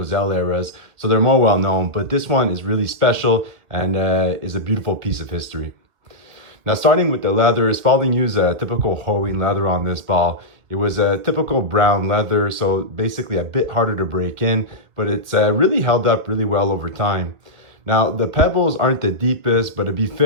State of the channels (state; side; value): late; left; 1.8 ms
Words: eras. So they're more well known, but this one is really special and is a beautiful piece of history. Now starting with the leather, Spalding used a typical hoeing leather on this ball. It was a typical brown leather, so basically a bit harder to break in, but it's really held up really well over time. Now the pebbles aren't the deepest, but to be